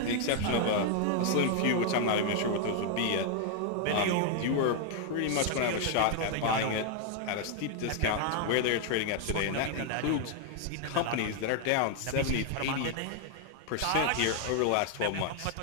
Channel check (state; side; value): different; both; correlation 0.00